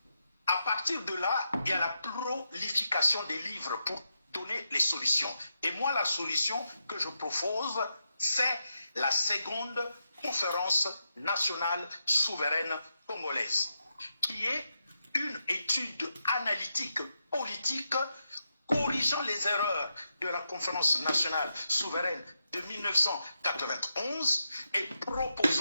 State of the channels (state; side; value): inverted; both; correlation -0.85